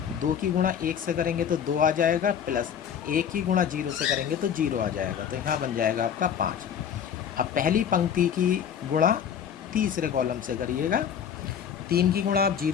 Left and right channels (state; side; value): quieter; right; 8.3 dB